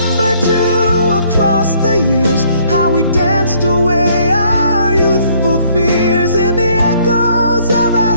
too, across the years, how we danced away our youthful fears. In the echoes of our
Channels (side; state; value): both; inverted; correlation -0.64